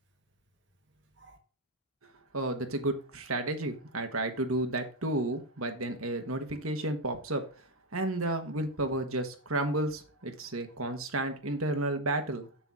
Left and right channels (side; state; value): both; normal; correlation 0.05